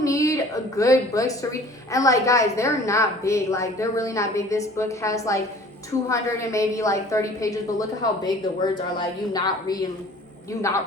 need a good books to read, and like guys, they're not big, like they're really not big. This book has like 200 and maybe like 30 pages, but look at how big the words are. Like you not reading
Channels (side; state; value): both; normal; correlation 0.48